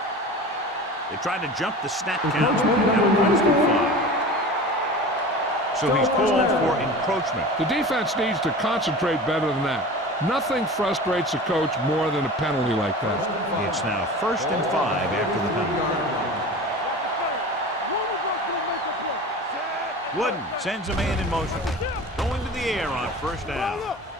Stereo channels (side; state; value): both; normal; correlation 0.35